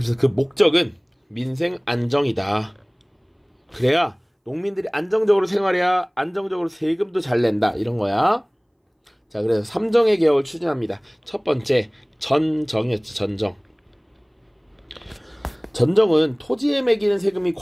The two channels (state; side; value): identical; both; correlation 1.00